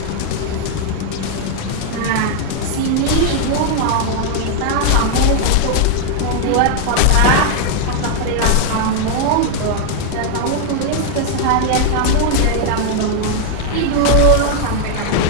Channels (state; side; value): different; both; correlation 0.00